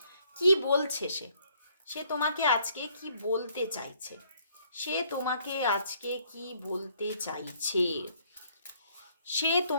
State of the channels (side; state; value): both; inverted; correlation -0.65